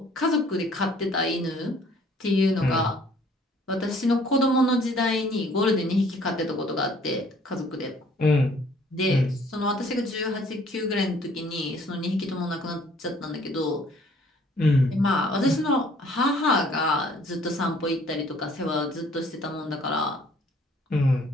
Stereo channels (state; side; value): normal; both; correlation 0.58